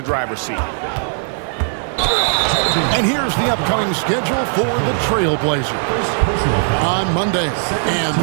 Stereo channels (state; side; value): silent; left; digital silence